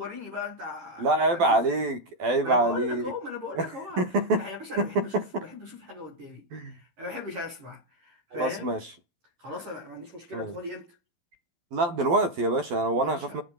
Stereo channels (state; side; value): late; left; 12 ms